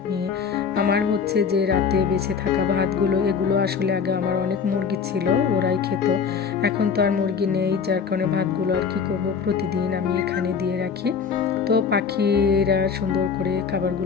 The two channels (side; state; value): right; quieter; 6.2 dB